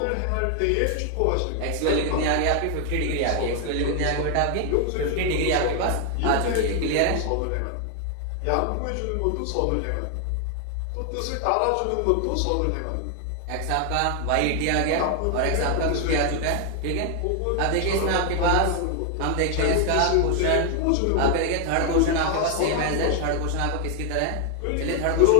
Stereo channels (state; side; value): different; both; correlation 0.00